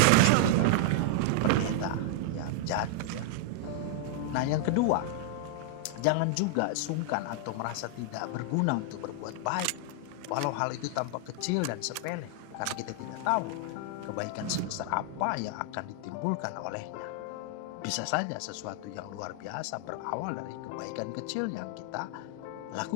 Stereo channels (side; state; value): both; different; correlation -0.01